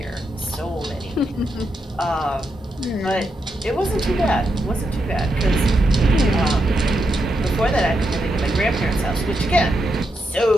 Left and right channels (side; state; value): both; normal; correlation 0.83